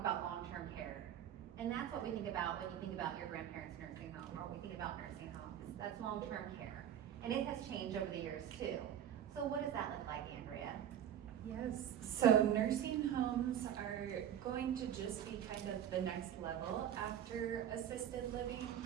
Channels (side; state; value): left; quieter; 10.1 dB